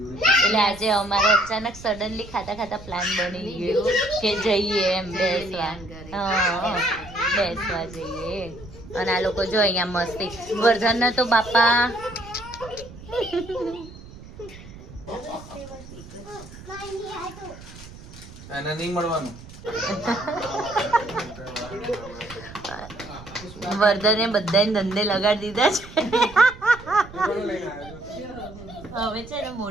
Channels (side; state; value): right; noise; rumble, 17 dB below the sound